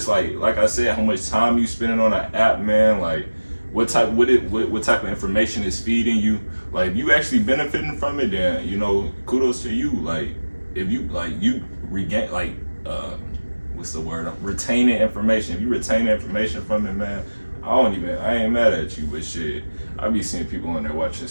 like I said, how much time you spending on an app, man. Like, what type of information is feeding you? Like, if you actually benefiting from it, then kudos to you. Like, if you you regain what's the word? Retaining information. If you retain the information from it, man. I ain't mad at you, but shit, I be seeing people on there watching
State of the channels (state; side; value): inverted; both; correlation -1.00